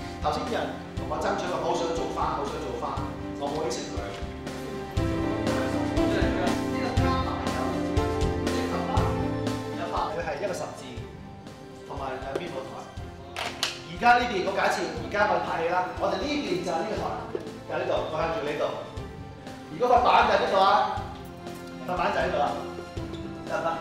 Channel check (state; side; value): identical; both; correlation 1.00